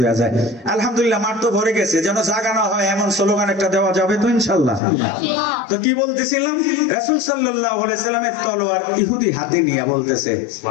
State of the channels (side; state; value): right; drops out; at 4.8 s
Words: হয়ে যায়। আলহামদুলিল্লাহ মাঠ তো ভরে গেছে, যেন জায়গা না হয় এমন স্লোগান একটা দেওয়া যাবে তো ইনশাআল্লাহ। তো কি বলতেছিলাম? রাসূল সাল্লাল্লাহু আলাইহি সাল্লামের তলোয়ার ইহুদি হাতে নিয়ে বলতেছে,